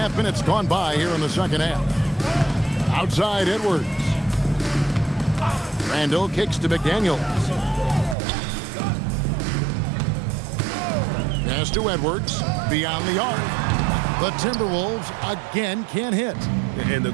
minutes gone by here in the second half. Outside Edwards. Randall kicks to McDaniels. Pass to Edwards. Beyond the arc. The Timberwolves again can't hit. And the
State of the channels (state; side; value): drops out; left; at 8.2 s